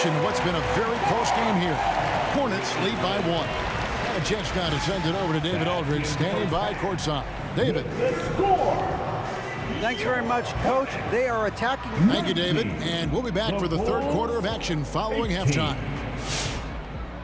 What's been a very close game here. Hornets lead by 1. And a chance now to send it over to David Aldridge, standing by courtside. David. Thanks very much, Coach. They are attacking. Thank you, David. And we'll be back for the third quarter of action following halftime.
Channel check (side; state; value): both; identical; correlation 1.00